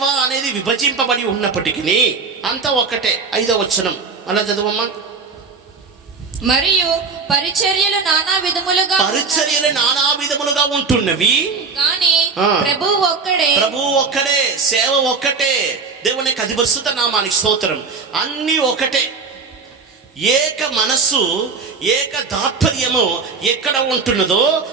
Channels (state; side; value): quieter; left; 4.8 dB